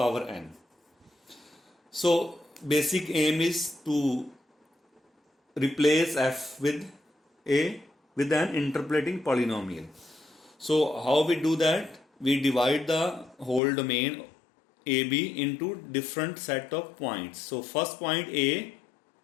n. So basic aim is to replace f with an interpolating polynomial. So how we do that? We divide the whole domain AB into different set of points. So first point A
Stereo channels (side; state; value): right; drops out; at 13.6 s